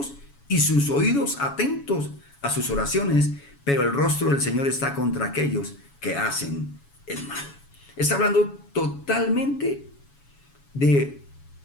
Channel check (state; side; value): late; right; 7.1 ms